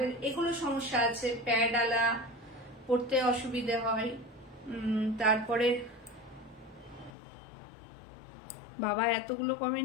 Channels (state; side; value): drops out; right; at 7.1 s